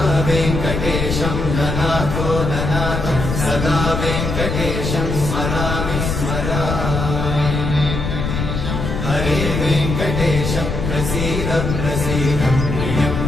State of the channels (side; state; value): left; noise; rumble, 3 dB below the sound